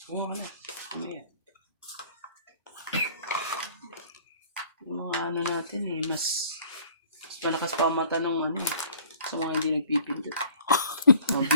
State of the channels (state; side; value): inverted; both; correlation -0.53